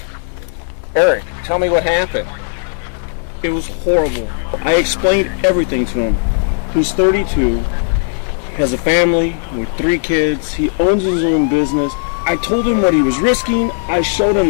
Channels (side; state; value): right; silent; digital silence